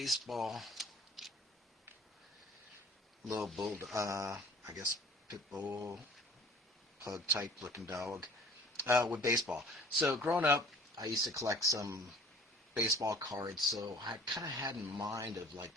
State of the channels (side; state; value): both; normal; correlation 0.52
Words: little bull, I guess pit bull, pug type looking dog with baseball. So growing up, I used to collect some baseball cards, so I kind of had in mind of like